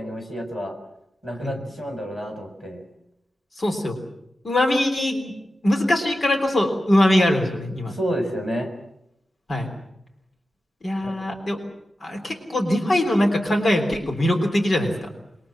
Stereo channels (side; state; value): both; normal; correlation 0.92